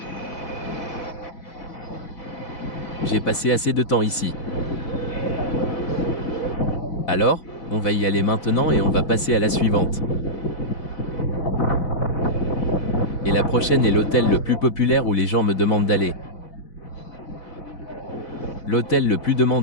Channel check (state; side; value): late; right; 4.0 ms